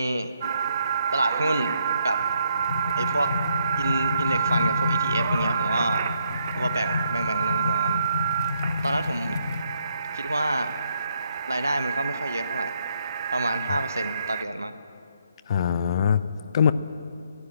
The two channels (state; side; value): inverted; both; correlation -0.73